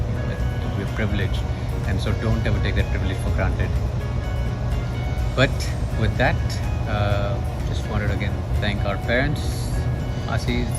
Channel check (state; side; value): identical; both; correlation 1.00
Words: we're privileged, and so don't ever take that privilege for granted. But with that, just wanted to again thank our parents, Asis.